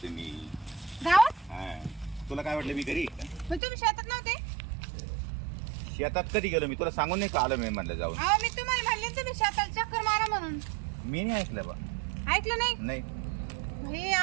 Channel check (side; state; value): left; drops out; at 3.6 s